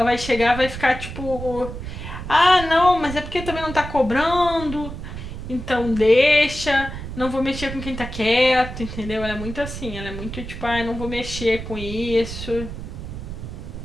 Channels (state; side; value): noise; right; rumble, 9 dB below the sound